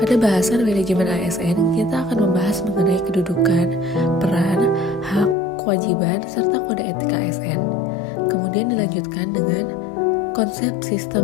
Pada bahasan manajemen ASN, kita akan membahas mengenai kedudukan, peran, hak, kewajiban, serta kode etik ASN. Kemudian dilanjutkan dengan konsep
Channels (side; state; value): right; drops out; at 5.4 s